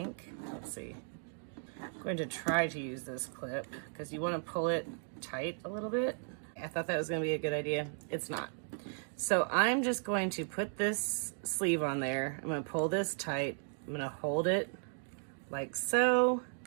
let's see, I'm going to try to use this clip because you want to pull it tight a little bit. I thought that was going to be a good idea. It's not. So I'm just going to put this sleeve on there. I'm going to pull this tight. I'm going to hold it like so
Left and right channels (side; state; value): left; silent; 54 dB below the other